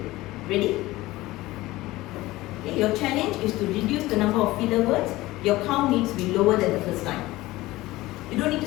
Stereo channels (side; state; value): right; quieter; 18.4 dB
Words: Ready? Okay, your challenge is to reduce the number of filler words. Your count needs to be lower than the first time. You don't need to